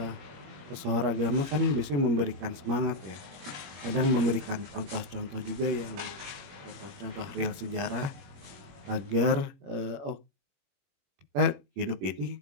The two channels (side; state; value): left; late; 21 ms